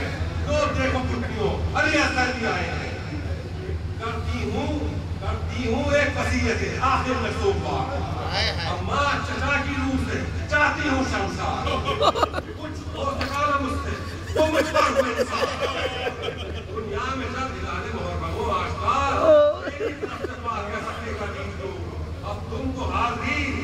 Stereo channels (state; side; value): identical; both; correlation 1.00